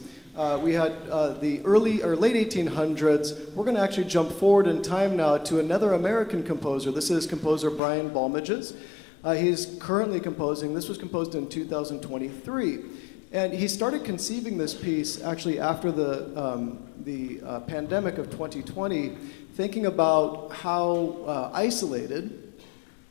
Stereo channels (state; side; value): drops out; right; at 7.8 s